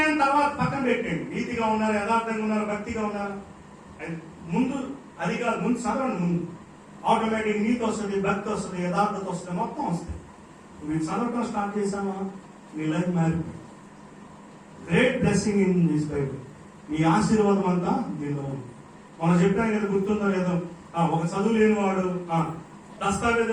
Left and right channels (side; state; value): both; identical; correlation 1.00